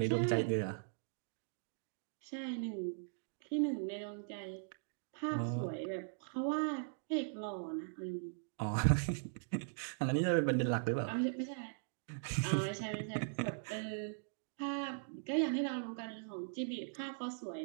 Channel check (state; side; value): silent; left; digital silence